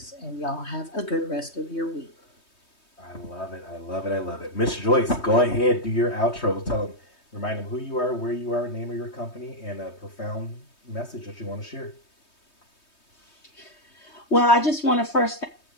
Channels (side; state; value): right; late; 3.2 ms